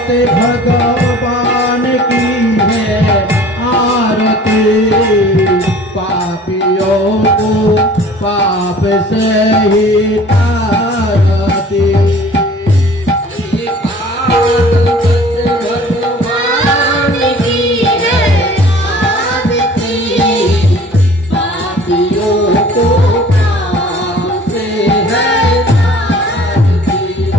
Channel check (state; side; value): normal; both; correlation 0.49